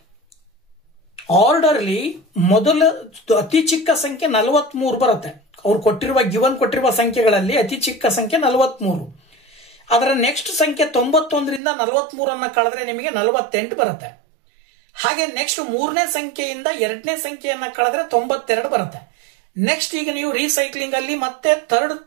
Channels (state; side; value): drops out; left; at 11.6 s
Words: ಆರ್ಡರ್ಲಿ ಮೊದಲ ಅತಿ ಚಿಕ್ಕ ಸಂಖ್ಯೆ 43 ಬರುತ್ತೆ. ಅವ್ರು ಗಿವನ್ ಕೊಟ್ಟಿರುವ ಸಂಖ್ಯೆಗಳಲ್ಲಿ ಅತಿ ಚಿಕ್ಕ ಸಂಖ್ಯೆ 43. ಅದರ ನೆಕ್ಸ್ಟ್ ಸಂಖ್ಯೆ 91ರಿಂದ 43 ಕಳೆದ್ರೆ ನಿಮಗೆ 48 ಬರುತ್ತೆ. ಹಾಗೆ ನೆಕ್ಸ್ಟ್ 3ನೇ ಸಂಖ್ಯೆಯಿಂದ 2ನೇ ಸಂಖ್ಯೆಯನ್ನ ಕಳೆದ್ರೆ 92 ಬರುತ್ತೆ. ನೆಕ್ಸ್ಟ್ ಈಗ ನೀವು ರೀಸೈಕ್ಲಿಂಗ್ ಅಲ್ಲಿ ಮತ್ತೆ ಥರ್ಡ್